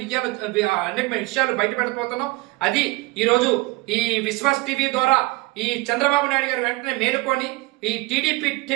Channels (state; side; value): quieter; left; 23.0 dB